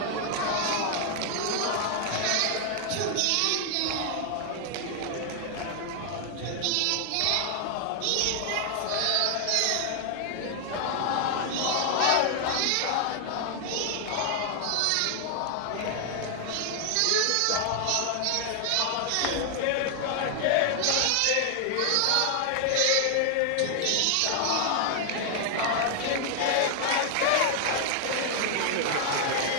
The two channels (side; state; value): both; different; correlation 0.00